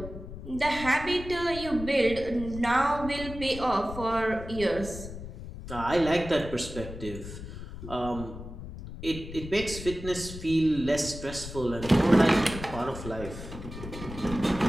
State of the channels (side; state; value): left; noise; rumble, 11 dB below the sound